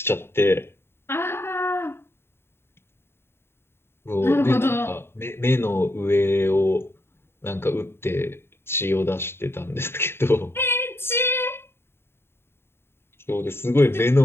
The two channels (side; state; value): right; late; 0.11 ms